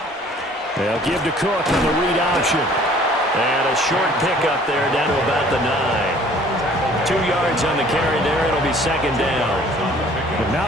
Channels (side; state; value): both; normal; correlation 0.54